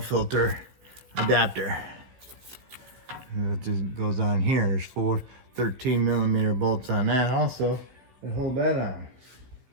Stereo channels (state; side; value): late; left; 16 ms